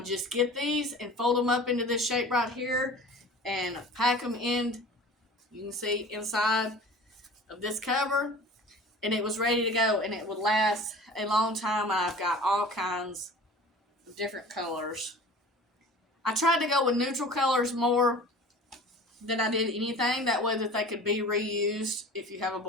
just get these and fold them up into this shape right here and pack them in, you can see, inside of this cover, and it was ready to go, and it would last a long time. I've got all kinds of different colors. I tried to go with neutral colors more than I did anything, that way that they could be reused if you have a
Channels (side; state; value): both; normal; correlation 0.41